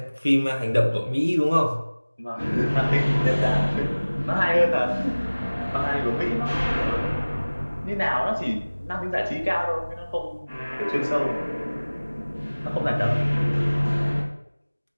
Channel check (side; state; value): both; inverted; correlation -1.00